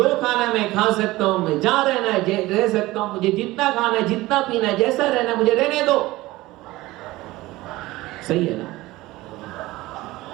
खाना है मैं खा सकता हूं, मैं जहां रहना है रह सकता हूं, मुझे जितना खाना है, जितना पीना है, जैसा रहना है मुझे रहने दो। सही है ना?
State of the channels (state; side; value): quieter; left; 18.7 dB